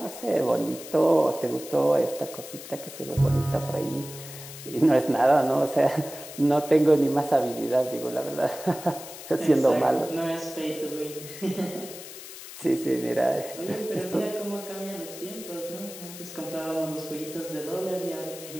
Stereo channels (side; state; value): left; noise; hiss, 13 dB below the sound